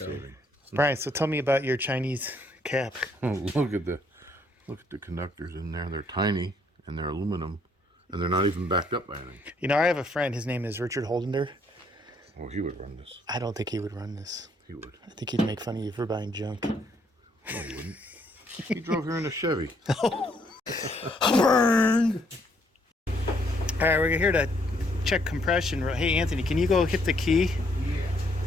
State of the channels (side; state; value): both; normal; correlation 0.69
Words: Brian, so tell me about your Chinese cap. Oh, look at the conductors in there. They're tiny and they're aluminum, and they're not even backed up by anything. You know, I have a friend. His name is Richard Holdender. Oh, he would run this. I don't think he would run this. He would. I think he'd make fun of you for buying junk. No, he wouldn't. He drove here in a Chevy. Burn! All right, we're here to check compression. Hey, Anthony, can you go hit the key? Yeah.